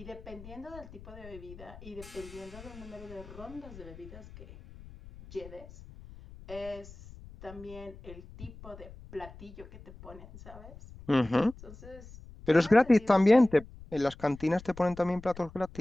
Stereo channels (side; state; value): left; noise; rumble, 17 dB below the sound